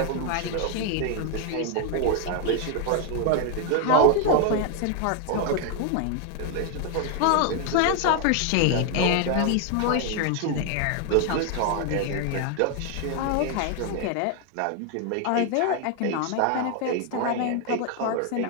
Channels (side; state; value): both; different; correlation 0.01